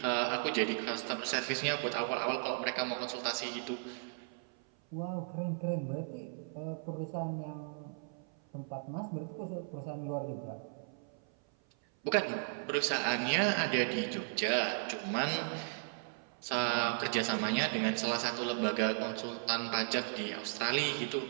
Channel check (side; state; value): left; silent; 54 dB below the other